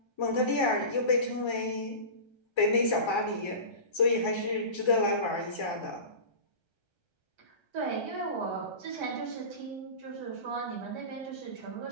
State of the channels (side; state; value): right; late; 1.3 ms